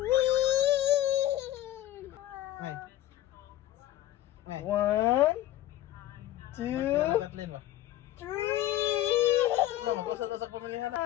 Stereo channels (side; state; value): right; quieter; 13.9 dB